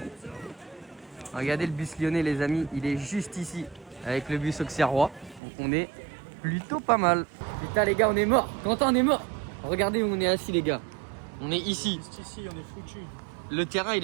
Regardez le bus lyonnais les amis, il est juste ici. Avec le bus auxerrois. Donc on est plutôt pas mal. Putain les gars on est mort. Quentin on est mort. Regardez où on est assis les gars. On est ici. Juste ici, on est foutu. Le terrain il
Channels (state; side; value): drops out; left; at 5.4 s